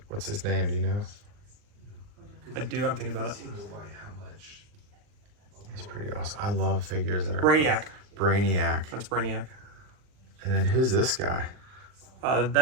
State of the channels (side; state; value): left; late; 39 ms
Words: what's his name. Do you know? I do. I'm thinking about it. He's pretty awesome. I love figures that are Brainiac. That's Brainiac. And then who's this guy?